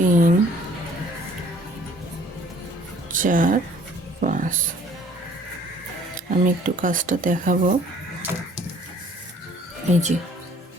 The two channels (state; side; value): normal; both; correlation 0.56